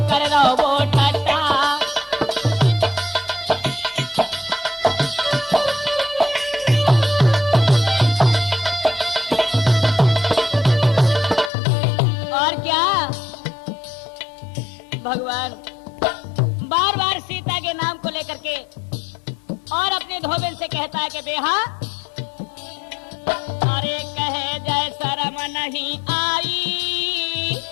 करे रहो वो ठट्टा। और क्या? भगवान बार बार सीता के नाम को लेकर के और अपने धोबिन से कहता है कि बेहा, अरे कहे जय शर्म नहीं आई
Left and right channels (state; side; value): drops out; right; at 11.5 s